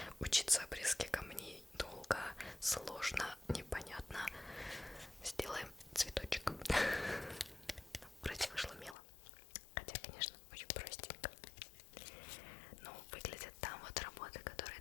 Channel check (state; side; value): drops out; right; at 9.0 s